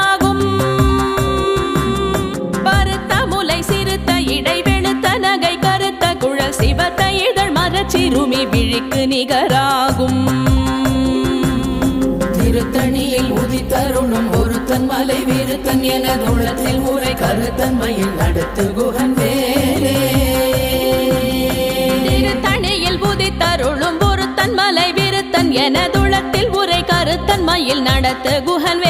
பருத்த முலை சிறுத்த இடை வெளுத்த நகை கருத்த குழல் சிவத்த இதழ் மரச்சிறுமி விழிக்கு நிகராகும். திருத்தணியில் உதித்தருளும் ஒருத்தன் மலை விருத்தன் எனதுளத்தில் உரை கருத்தன் மயில் நடத்து குஹன் வேலே. திருத்தணியில் உதித்தருளும் ஒருத்தன் மலை விருத்தன் எனதுளத்தில் உரை கருத்தன் மயில் நடத்து குஹன்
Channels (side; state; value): both; identical; correlation 1.00